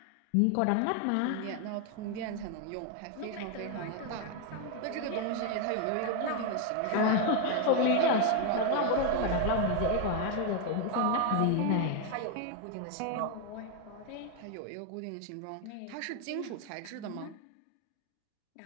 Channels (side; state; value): both; different; correlation 0.01